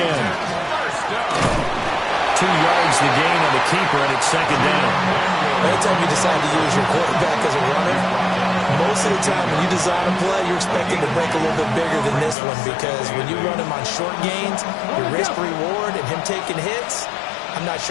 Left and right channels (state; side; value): drops out; right; at 12.4 s